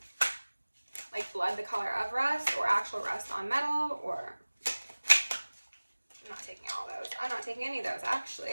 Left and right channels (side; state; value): both; inverted; correlation -1.00